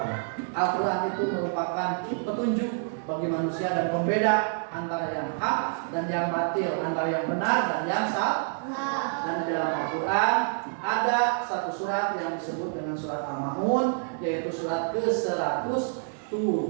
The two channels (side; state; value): left; silent; digital silence